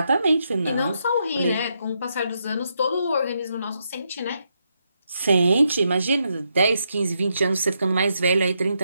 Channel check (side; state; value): both; inverted; correlation -0.81